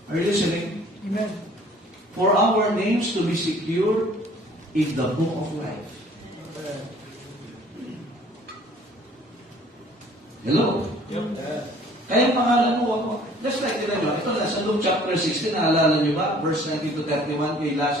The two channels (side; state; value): both; normal; correlation 0.54